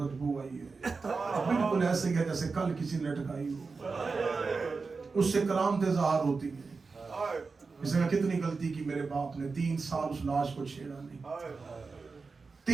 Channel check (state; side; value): quieter; left; 4.4 dB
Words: آئی ہے, بالکل ایسے ہی ہے جیسے کل کسی نے لٹکائی ہو. اس سے کرامتیں ظاہر ہوتی ہیں. اس نے کتنی غلطی کی میرے باپ نے, 3 سال اس لاش کو چھیڑا نہیں.